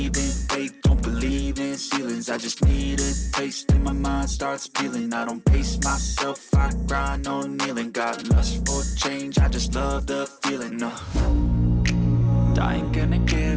in fate, don't believe in ceilings. I just need a taste and my mind starts peeling. I don't pace myself, I grind on kneeling. Got lust for change, I just love the feeling. I ain't gonna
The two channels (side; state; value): both; identical; correlation 1.00